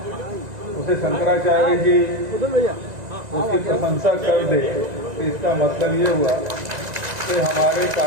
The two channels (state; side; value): late; left; 1.9 ms